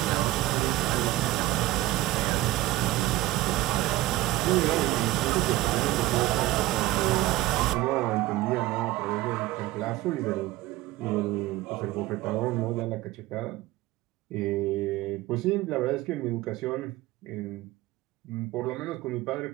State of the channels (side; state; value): left; quieter; 16.8 dB